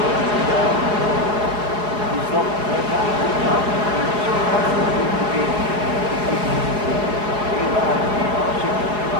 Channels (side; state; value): left; late; 4.8 ms